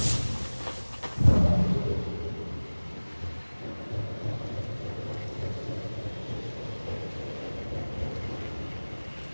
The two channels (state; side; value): inverted; both; correlation -1.00